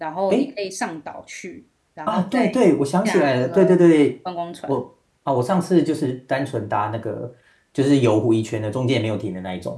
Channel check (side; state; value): both; identical; correlation 1.00